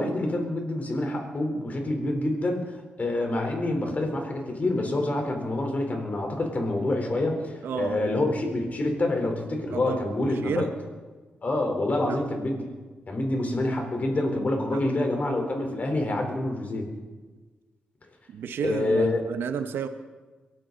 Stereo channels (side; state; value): both; normal; correlation 0.86